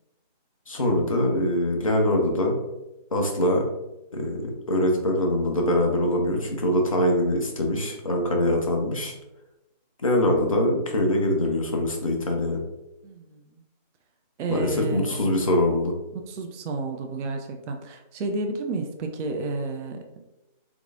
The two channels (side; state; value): both; inverted; correlation -0.37